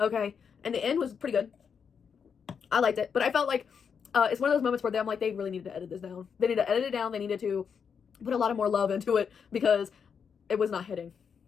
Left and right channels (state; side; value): quieter; right; 6.7 dB